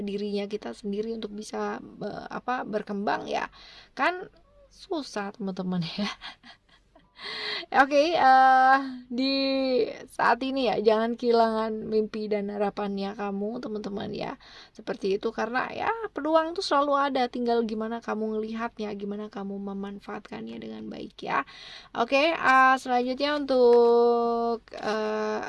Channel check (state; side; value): identical; both; correlation 1.00